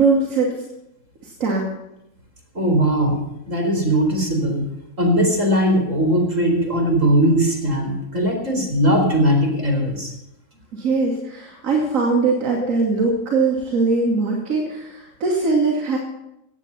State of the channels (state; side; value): late; left; 3.7 ms